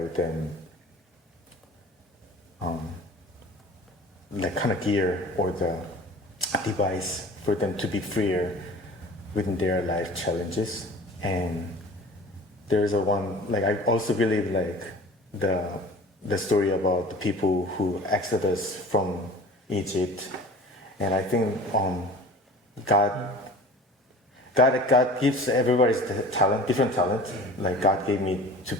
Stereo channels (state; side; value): normal; both; correlation 0.42